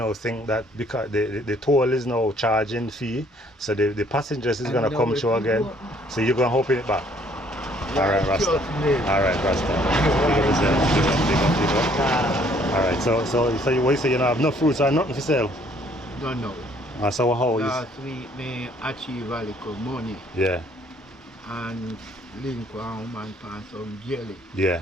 think that because the toll is now charging fee, so the passengers is gonna come through again. So you're gonna open it back. Alright, Rasta. Alright, Rasta. Alright, so you say you don't have no fruits or nothing for sale? No. So how is last week me achieve a little money. Yeah. And link one woman for some jelly.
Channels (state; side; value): normal; both; correlation 0.62